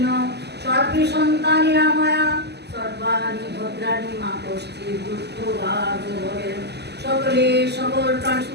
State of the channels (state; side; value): late; left; 0.49 ms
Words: সর্বে সন্তানি রামায়া, সর্বাণি ভদ্রাণি মা কশ্চিৎ দুঃখভাগ ভবেৎ, সকলে সকল প্রাণ